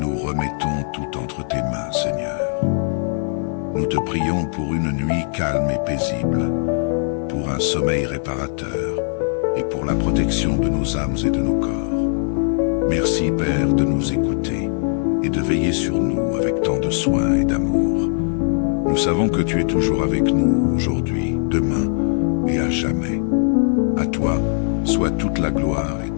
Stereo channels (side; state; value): right; silent; 57 dB below the other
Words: remettons tout entre tes mains, Seigneur. Nous te prions pour une nuit calme et paisible, pour un sommeil réparateur et pour la protection de nos âmes et de nos corps. Merci, Père, de nous écouter et de veiller sur nous avec tant de soin et d'amour. Nous savons que tu es toujours avec nous aujourd'hui, demain et à jamais. À toi soit toute la gloire et